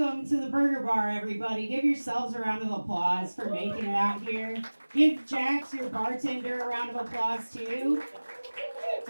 to the Burger Bar, everybody. Give yourselves a round of applause for making it out here. Give Jax, your bartender, a round of applause, too.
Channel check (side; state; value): both; inverted; correlation -1.00